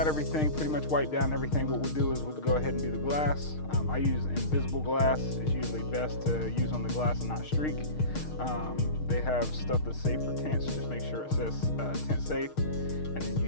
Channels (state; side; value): late; right; 6.5 ms